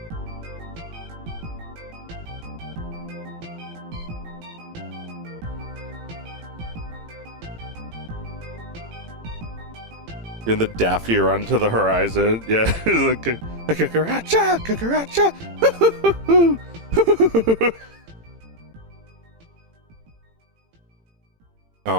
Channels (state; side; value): late; left; 18 ms